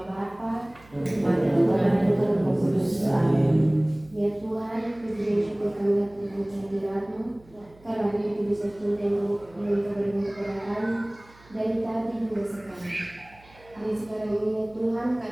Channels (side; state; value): right; noise; hum, 26 dB below the sound